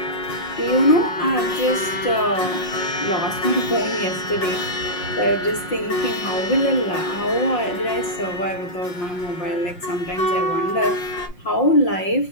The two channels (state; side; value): late; right; 5.6 ms